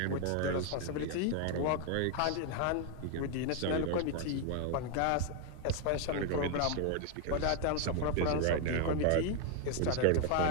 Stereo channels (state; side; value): different; both; correlation 0.00